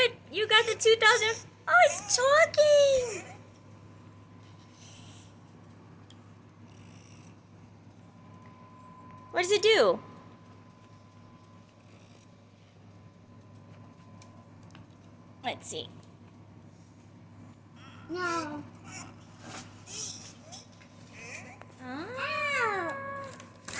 You got the 2000. Oh, it's talking. What does it do? Let's see. No. Ah.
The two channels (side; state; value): both; identical; correlation 1.00